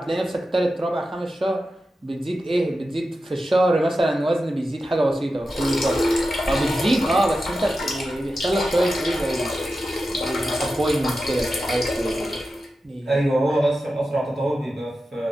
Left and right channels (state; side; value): normal; both; correlation 0.91